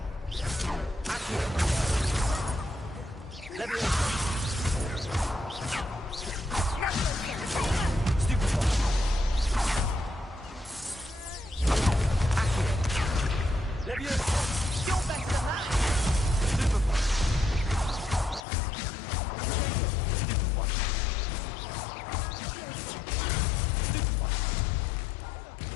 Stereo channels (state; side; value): drops out; right; at 18.4 s